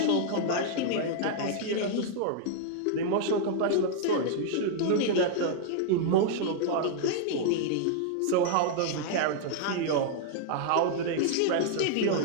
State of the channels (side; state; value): both; different; correlation -0.01